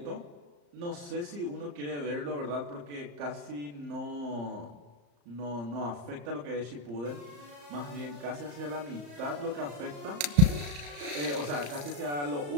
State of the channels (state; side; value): late; left; 34 ms